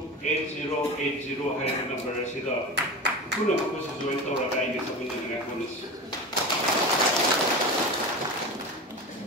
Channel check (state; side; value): normal; both; correlation 0.28